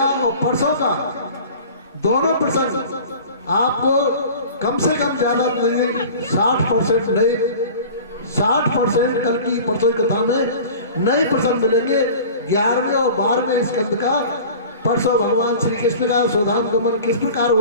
और परसों का दोनों प्रसंग आपको कम से कम ज्यादा 60% नए, 60% कल की परसों की कथा में नए प्रसंग मिलेंगे। 11वें और 12वें स्कंद का परसों भगवान श्री कृष्ण का स्वधाम गमन किस प्रकार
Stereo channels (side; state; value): both; inverted; correlation -0.41